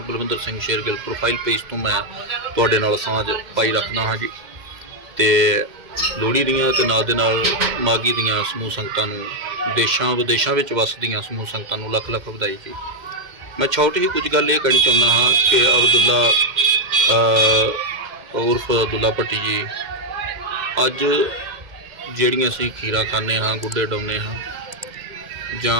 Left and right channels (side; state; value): left; late; 2.1 ms